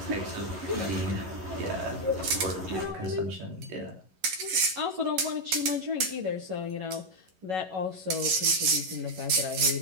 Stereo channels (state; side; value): late; left; 11 ms